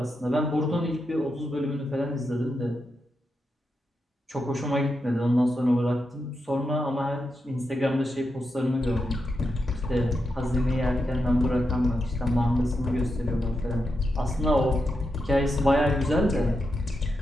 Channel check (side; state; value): both; normal; correlation 0.86